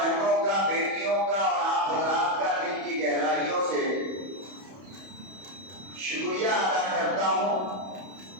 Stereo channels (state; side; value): late; left; 31 ms